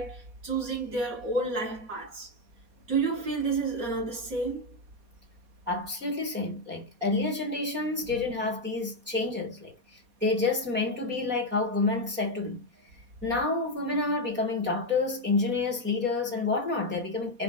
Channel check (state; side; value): late; left; 4.2 ms